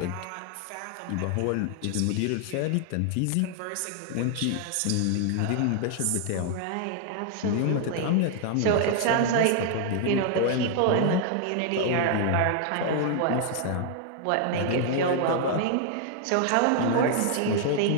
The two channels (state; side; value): different; both; correlation 0.00